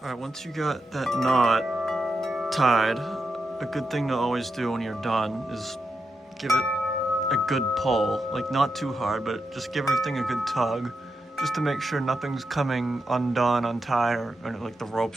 All right, once you got that knot tied, a good thing to always do when you're done is give it a good pull, like not too hard, but just give everything a good tug, just to make sure nothing's coming undone, untied, or like the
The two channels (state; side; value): normal; both; correlation 0.86